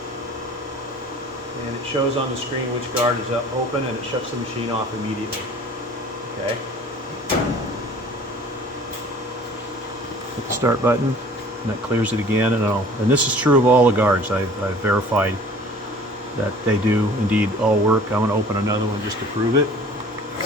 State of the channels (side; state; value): both; normal; correlation 0.48